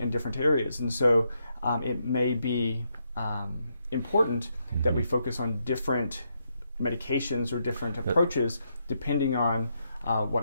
different areas, and so it may be important that we focus on different medications or different approaches depending on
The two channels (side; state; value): both; inverted; correlation -0.80